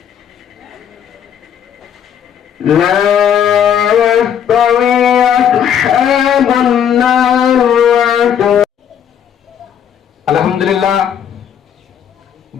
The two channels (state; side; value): quieter; right; 8.8 dB